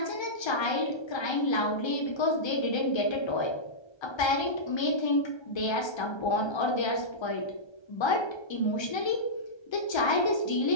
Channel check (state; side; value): late; right; 1.3 ms